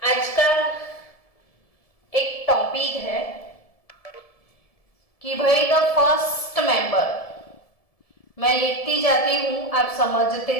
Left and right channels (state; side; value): late; right; 1.7 ms